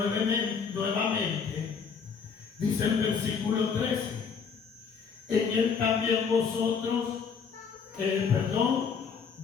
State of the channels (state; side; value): quieter; right; 6.0 dB